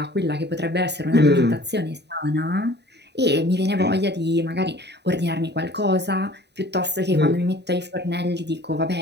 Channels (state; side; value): late; left; 0.49 ms